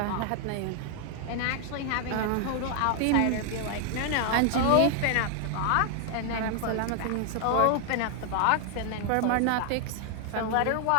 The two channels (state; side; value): different; both; correlation 0.00